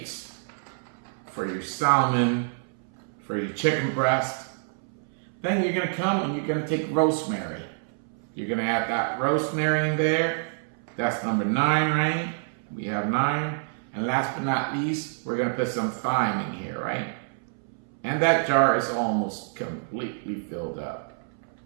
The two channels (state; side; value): silent; left; 60 dB below the other